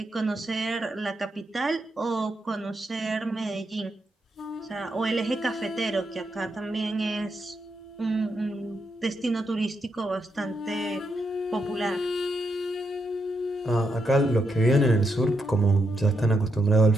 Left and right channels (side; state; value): both; normal; correlation 0.82